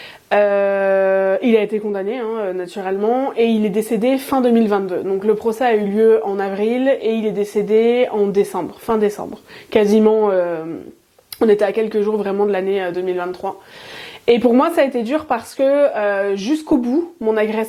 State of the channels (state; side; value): identical; both; correlation 1.00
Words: Il a été condamné naturellement et il est décédé fin 2022. Donc le procès a eu lieu en avril et il est décédé en décembre, fin décembre. Quasiment, on était à quelques jours vraiment de l'année 2023. Et pour moi ça a été dur parce que jusqu'au bout, mon